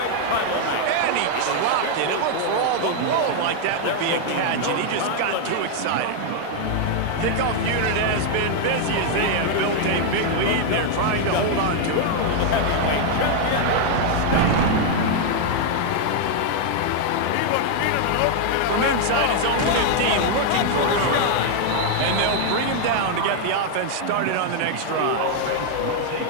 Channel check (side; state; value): both; different; correlation 0.00